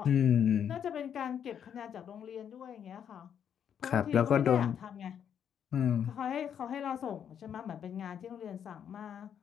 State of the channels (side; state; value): right; quieter; 8.6 dB